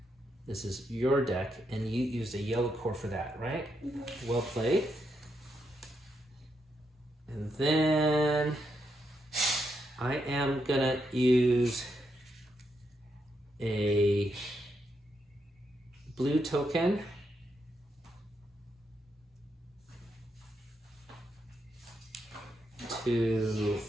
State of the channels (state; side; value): normal; both; correlation 0.81